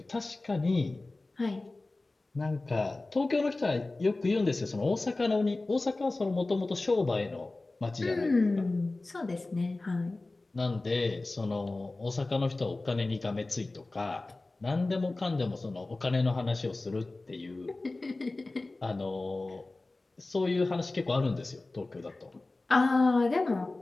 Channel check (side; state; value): right; quieter; 3.1 dB